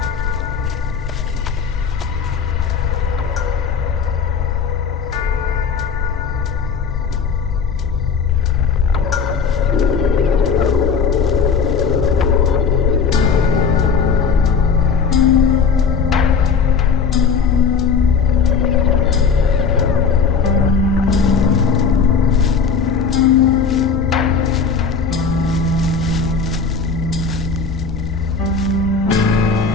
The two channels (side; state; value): right; quieter; 5.7 dB